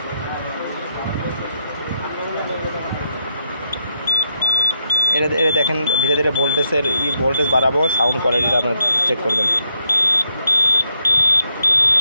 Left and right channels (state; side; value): inverted; both; correlation -0.78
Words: এটা দেখেন ধীরে ধীরে ভোল্টেজ বাড়াবো, সাউন্ড কোয়ালিটিটা আপনারা চেক করবেন।